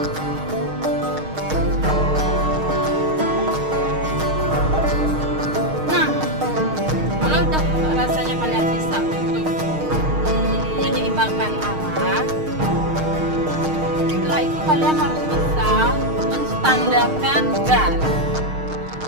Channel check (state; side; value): late; left; 6.4 ms